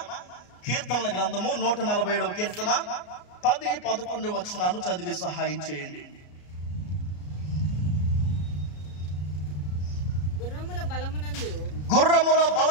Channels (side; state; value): right; late; 34 ms